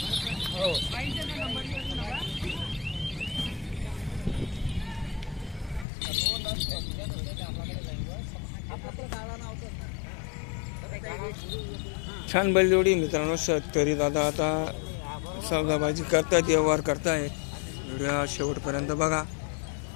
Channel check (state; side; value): drops out; right; at 5.9 s